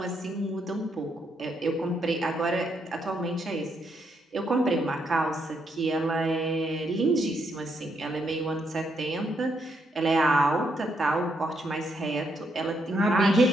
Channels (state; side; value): normal; both; correlation 0.77